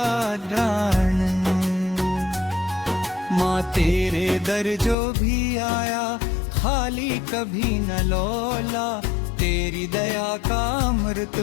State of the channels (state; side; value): drops out; right; at 5.0 s